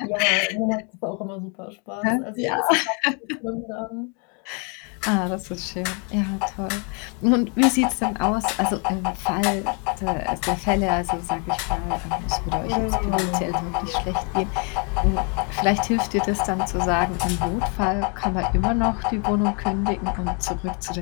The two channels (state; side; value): quieter; right; 36.4 dB